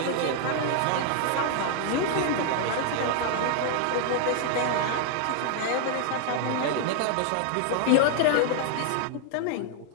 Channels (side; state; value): both; different; correlation 0.00